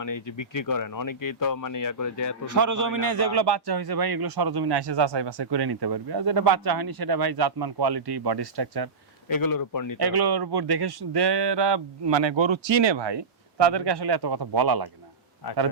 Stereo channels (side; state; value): left; quieter; 4.3 dB